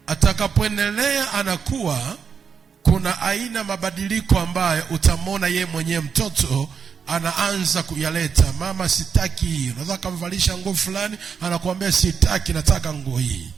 Atakapoendelea anakuwa, kuna aina mabadiliko ambayo utamwona yeye mwenyewe mtoto anaanza kuyaleta. Mama, sitaki hii. Unaweza kumvalisha nguo fulani, anakuambia sitaki, nataka nguo hii.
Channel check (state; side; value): quieter; left; 6.4 dB